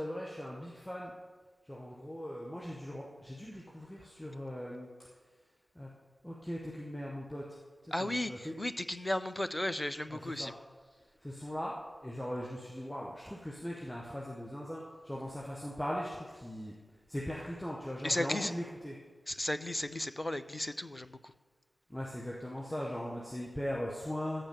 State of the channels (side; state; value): both; normal; correlation 0.97